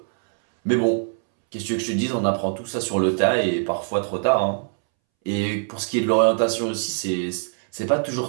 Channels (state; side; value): silent; left; 63 dB below the other